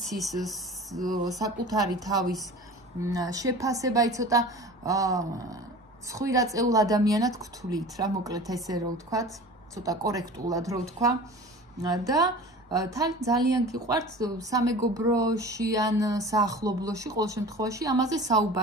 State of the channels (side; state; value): both; normal; correlation 0.38